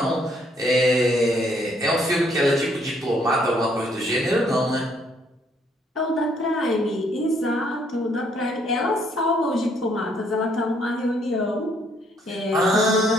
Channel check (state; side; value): normal; both; correlation 0.68